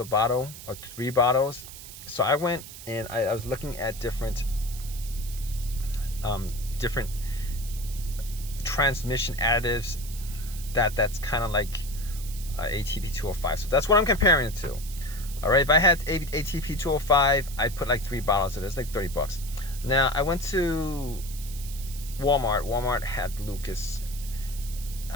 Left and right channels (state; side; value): noise; right; hiss, 14 dB below the sound